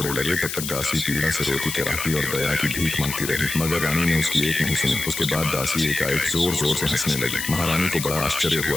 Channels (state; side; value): noise; left; hiss, 6 dB below the sound